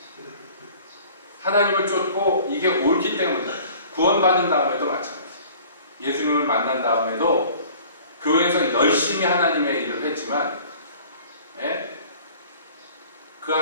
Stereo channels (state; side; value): inverted; both; correlation -0.49